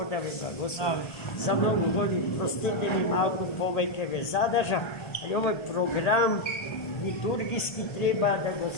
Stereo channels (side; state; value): right; late; 1.3 ms